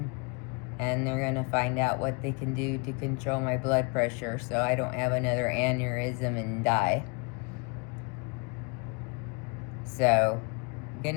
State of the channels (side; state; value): right; quieter; 31.8 dB